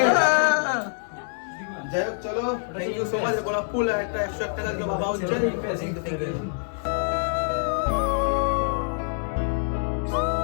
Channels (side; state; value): right; silent; digital silence